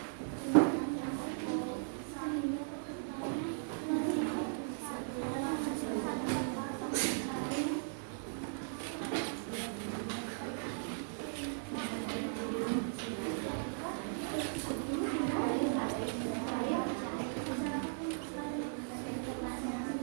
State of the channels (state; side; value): silent; left; digital silence